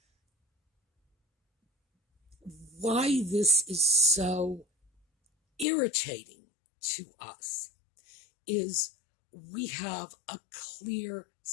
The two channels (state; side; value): drops out; right; at 5.7 s